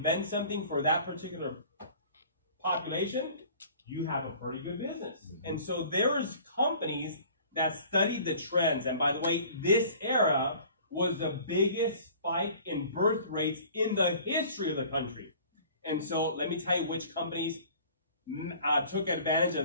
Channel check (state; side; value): inverted; both; correlation -0.48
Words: something for that particular population, you have a pretty good business. And so there's companies that studied the trends. And by the way, this era was the biggest spike in birth rates in the history of the country. And so let me tell you which companies took advantage